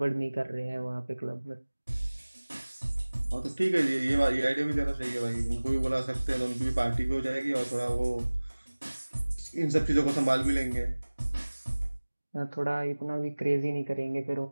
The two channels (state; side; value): inverted; both; correlation -1.00